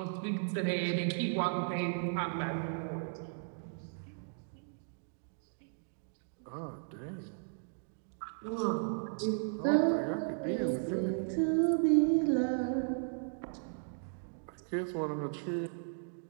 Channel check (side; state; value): left; silent; digital silence